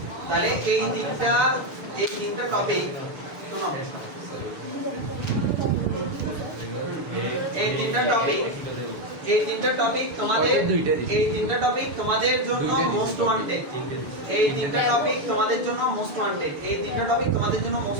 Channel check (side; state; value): left; late; 6.8 ms